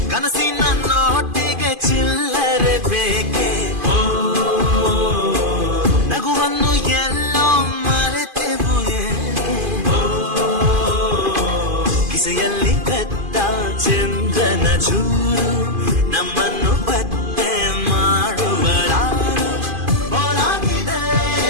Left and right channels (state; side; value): late; left; 2.5 ms